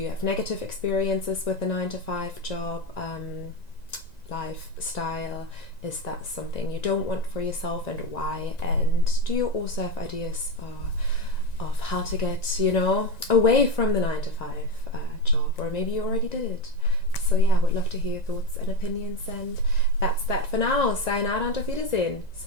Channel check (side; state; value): right; late; 1.9 ms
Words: have negative experiences with the 9-to-5 job lifestyle? Is that something you don't want for yourself, and why? And do you also have ideas of how to get, away from the 9-to-5 job, or maybe you already did it? So I would love to hear your thoughts and opinions, and that's that for now. Sayonara und auf Wiedersehen.